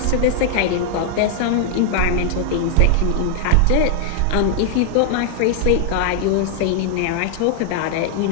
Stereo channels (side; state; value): both; different; correlation 0.00